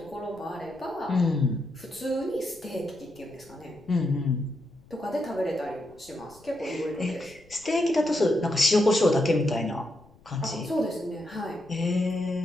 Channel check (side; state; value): left; noise; rumble, 27 dB below the sound